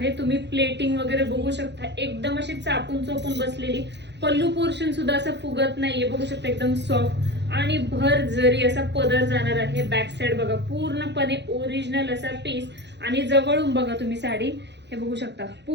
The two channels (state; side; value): late; left; 0.50 ms